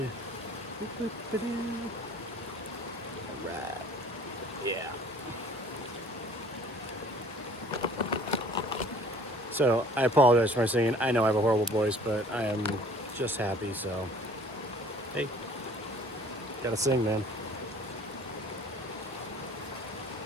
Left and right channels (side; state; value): both; normal; correlation 0.51